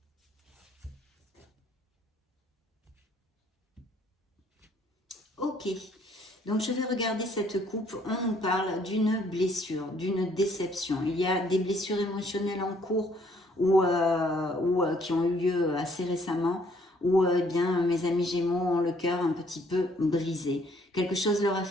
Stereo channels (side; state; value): both; normal; correlation 0.64